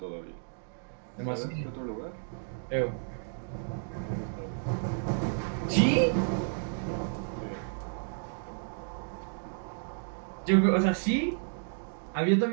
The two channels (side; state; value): left; silent; digital silence